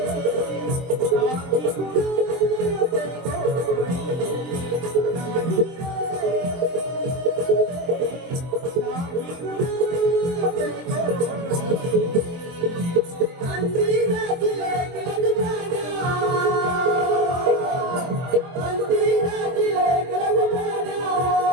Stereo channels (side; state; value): left; late; 23 ms